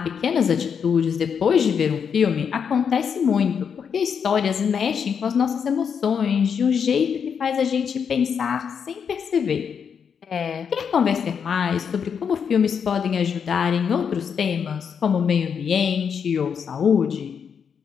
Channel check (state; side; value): quieter; right; 6.9 dB